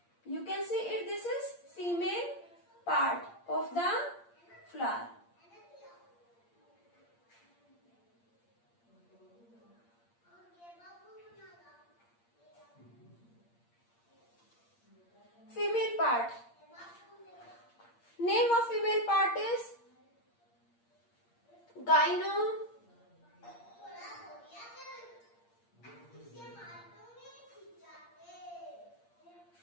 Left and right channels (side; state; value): right; late; 8.6 ms